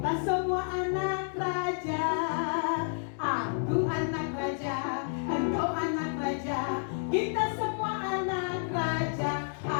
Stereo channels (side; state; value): right; silent; digital silence